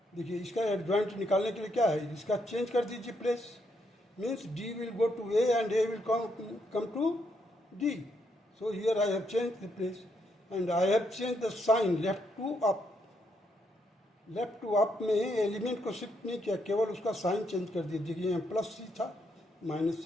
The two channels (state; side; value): normal; both; correlation 0.76